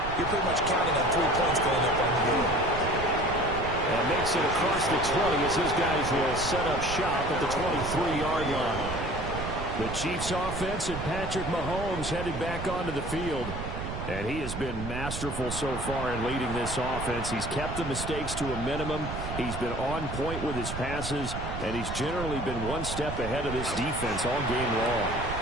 you're pretty much counting on 3 points going up on the board. And makes it across the 20 as his guys will set up shop at the 23-yard line. The Chiefs offense and Patrick Mahomes headed back onto the field. And he has been masterful so far in leading this offense. He's kept the mistakes to a minimum. He's been on point with his passes. And he's generally been one step ahead of this defense all game long.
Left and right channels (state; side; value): noise; right; rumble, 6 dB below the sound